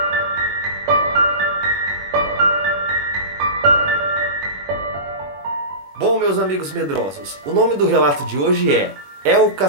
Bom, meus amigos medrosos, o nome do relato de hoje é o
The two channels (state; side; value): late; left; 21 ms